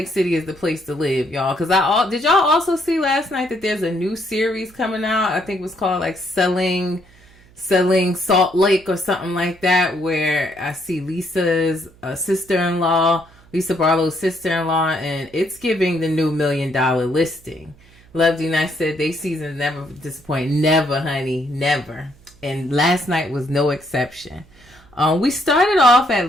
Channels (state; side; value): noise; right; hum, 27 dB below the sound